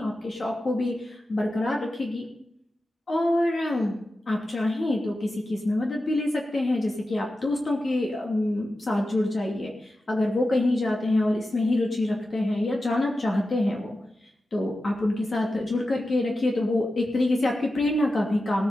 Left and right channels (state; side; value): normal; both; correlation 0.92